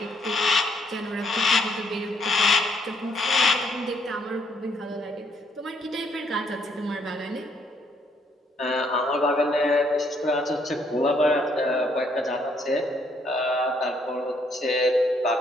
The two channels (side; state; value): both; normal; correlation 0.69